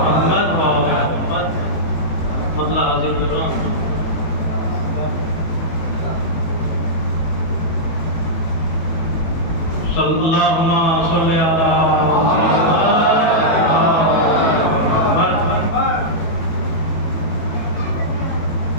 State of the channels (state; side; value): late; right; 18 ms